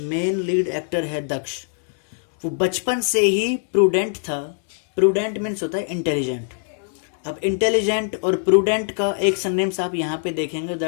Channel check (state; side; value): silent; right; 64 dB below the other